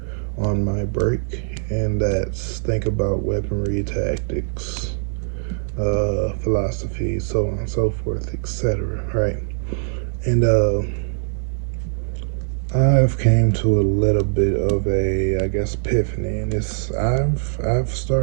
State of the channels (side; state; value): left; silent; digital silence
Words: on my break, and that's think about weaponry, tactics, philosophy, so on and so forth, etc. Right? And I've came to a little bit of a, I guess, epiphany, and it's I've